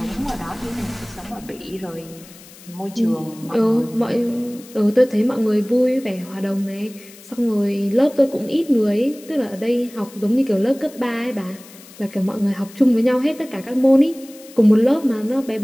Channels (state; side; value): noise; left; hiss, 21 dB below the sound